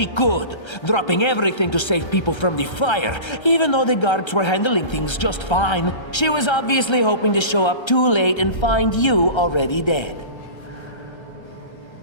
could, dropping everything to save people from the fire, even though the guards were handling things just fine. She was obviously hoping to show up too late and find you already dead.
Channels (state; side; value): late; right; 1.3 ms